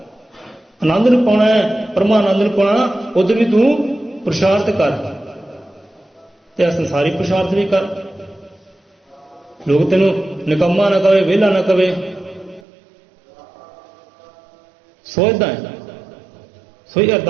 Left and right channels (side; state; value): left; drops out; at 12.6 s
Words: आनंद नूं पाउणा है, परमानंद नूं पाउणा, उधर भी तू पुरुषार्थ कर, ते संसारी पुरुषार्थ भी कर। लोग तेन निकम्मा ना कहे, वेला ना कहे, सोचता है। सो